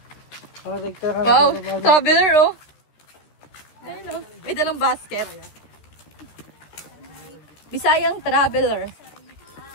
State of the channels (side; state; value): right; late; 13 ms